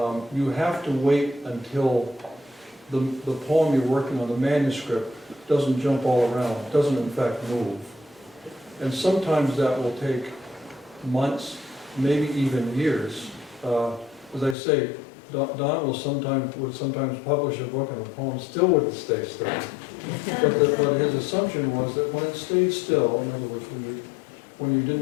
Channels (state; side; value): drops out; right; at 14.6 s